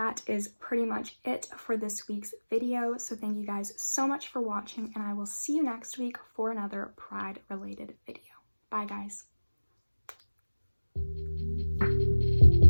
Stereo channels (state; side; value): inverted; both; correlation -1.00